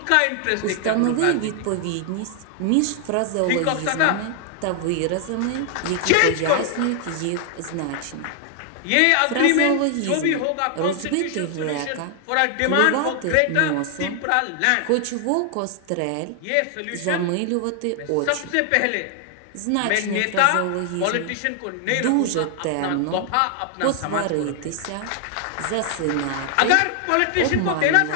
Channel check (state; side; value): different; both; correlation 0.00